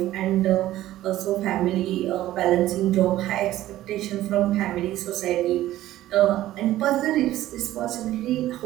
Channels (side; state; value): left; quieter; 14.5 dB